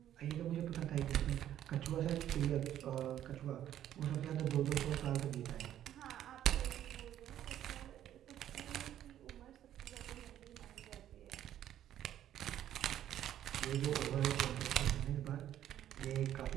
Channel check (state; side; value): quieter; left; 11.4 dB